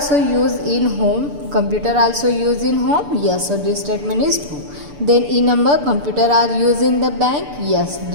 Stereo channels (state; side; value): late; left; 6.8 ms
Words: used in home. Yes, so this statement is true. Then E number, computer are used in the bank. Yes,